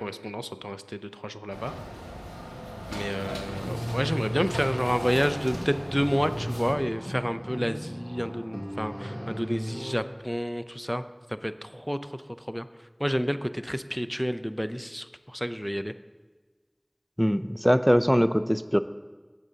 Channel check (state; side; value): identical; both; correlation 1.00